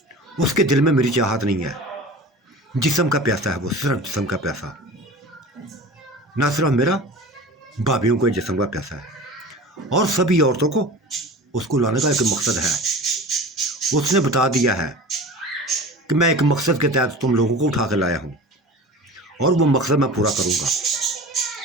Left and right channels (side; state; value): both; normal; correlation 0.36